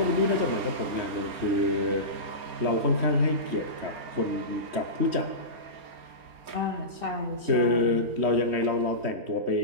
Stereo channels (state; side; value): late; left; 4.3 ms